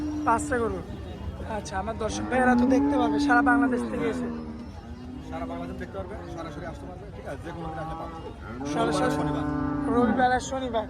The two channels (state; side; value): identical; both; correlation 1.00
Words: 5টা গরু। আচ্ছা, আমার দর্শক ভাইয়েরা তো দেখতে পারবে, সারা বাংলাদেশ থেকে এসে সারা বাংলাদেশ দেখতে পারবে, সরাসরি আসতে পারবে, ঠিক আছে, যে কোনো দিন আসলে পাবে। সরাসরি শনিবার, রবিবার আর শনিবার,